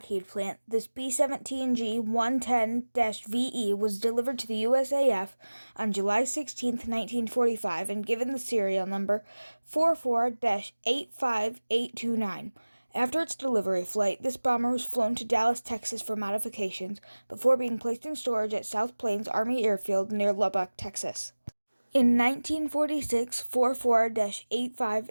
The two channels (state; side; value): inverted; both; correlation -1.00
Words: plant, this B-17G-110-VE was delivered to the USAF on July 16, 1945 and given the serial number 44-85829. After its delivery flight, this bomber was flown to Dallas, Texas for modifications before being placed in storage at South Plains Army Airfield near Lubbock, Texas. In 1946,